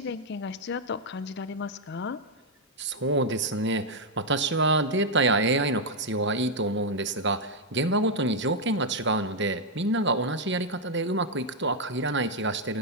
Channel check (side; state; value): both; normal; correlation -0.01